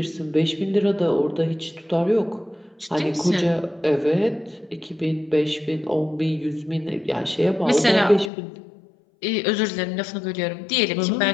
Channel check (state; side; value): drops out; right; at 8.3 s